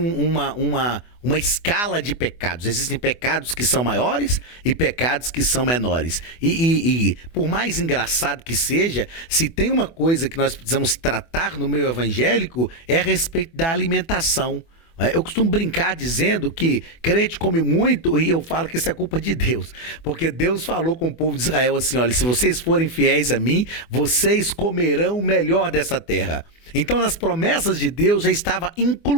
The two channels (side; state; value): right; late; 24 ms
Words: escala de pecados. Existem pecados que são maiores e pecados que são menores. E por mais engraçado que seja, se tem uma coisa que nós precisamos tratar no meio evangélico, é a respeito da alimentação. Eu costumo brincar dizendo que crente come muito e eu falo que isso é culpa de Deus. Porque Deus falou com o povo de Israel assim, olha, se vocês forem fiéis a mim, vocês comerão o melhor dessa terra. Então nas promessas de Deus já estava